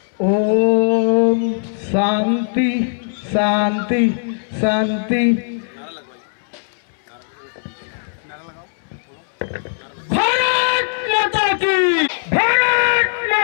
ओम शांति शांति शांति। भारत माता की, भारत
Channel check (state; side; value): silent; right; 65 dB below the other